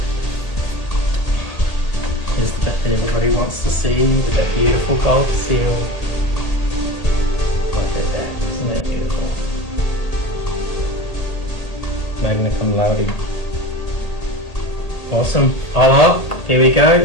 Here's the bit that everybody wants to see with that beautiful gold seal. Look at that, isn't that beautiful? Magna cum laude. Awesome. Oh well, here we go.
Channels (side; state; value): right; late; 1.8 ms